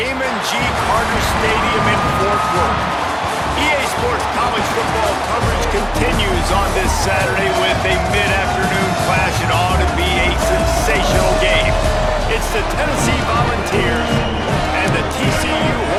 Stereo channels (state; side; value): identical; both; correlation 1.00